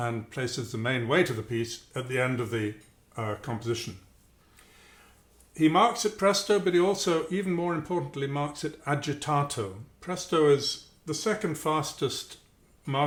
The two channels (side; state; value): both; identical; correlation 1.00